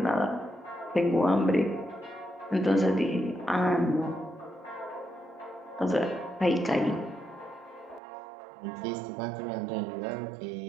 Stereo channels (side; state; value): left; drops out; at 8.0 s